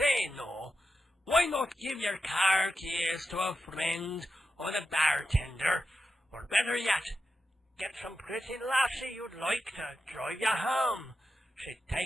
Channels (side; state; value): both; normal; correlation 0.89